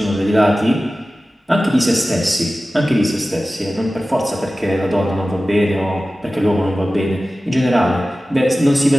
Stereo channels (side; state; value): both; normal; correlation 0.96